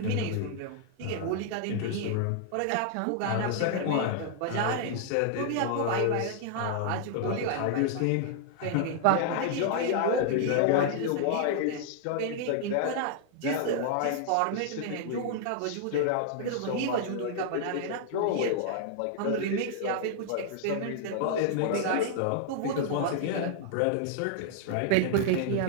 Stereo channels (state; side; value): different; both; correlation -0.01